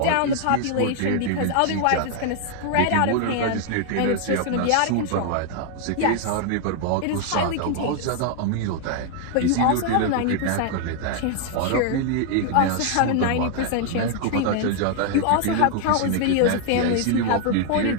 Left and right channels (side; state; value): both; different; correlation 0.00